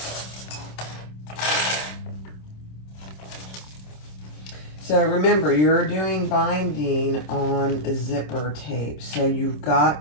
So remember, you're doing binding on a zipper tape. So you've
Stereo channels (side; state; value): right; late; 27 ms